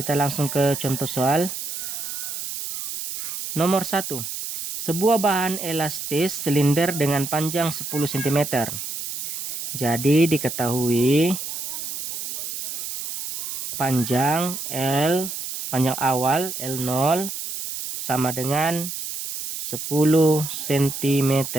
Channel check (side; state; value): right; noise; hiss, 6 dB below the sound